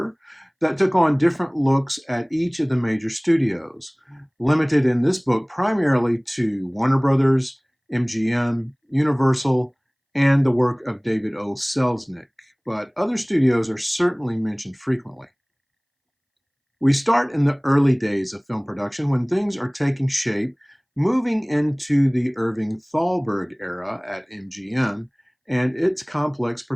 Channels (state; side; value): identical; both; correlation 1.00